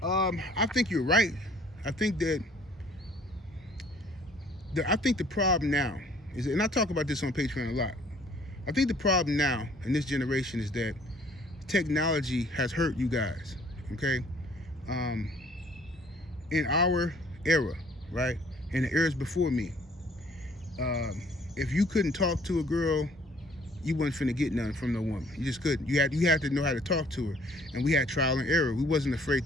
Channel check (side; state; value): both; normal; correlation 0.57